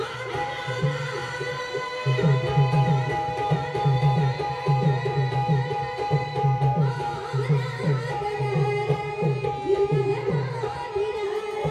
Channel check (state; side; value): identical; both; correlation 1.00